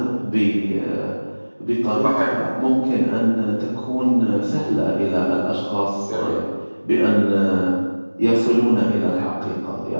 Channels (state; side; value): inverted; both; correlation -1.00